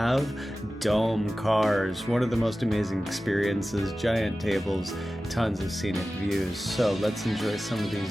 dome cars. One of the most amazing experiences, giant tables, tons of scenic views. So let's enjoy some of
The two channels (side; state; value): both; normal; correlation 0.95